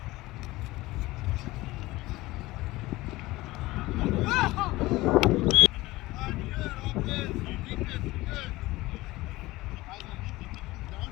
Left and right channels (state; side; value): quieter; right; 19.3 dB